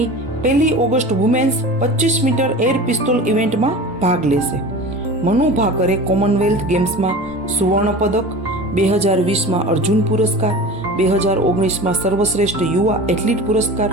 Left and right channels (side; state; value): both; normal; correlation 0.35